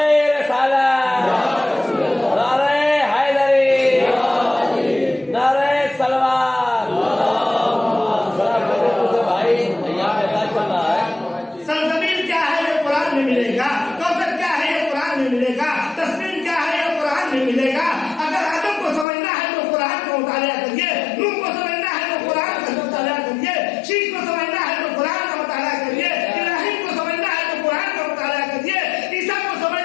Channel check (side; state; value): right; drops out; at 19.1 s